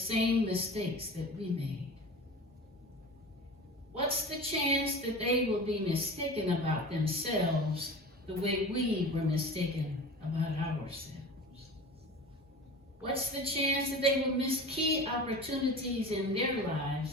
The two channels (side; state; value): both; normal; correlation 0.35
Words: mistakes that we made? What's the chance that they will be mistaken about themselves the way we were mistaken about ourselves? What's the chance that they will miss key opportunities in their